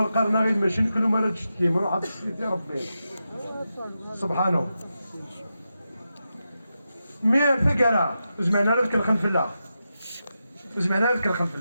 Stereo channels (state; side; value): inverted; both; correlation -0.89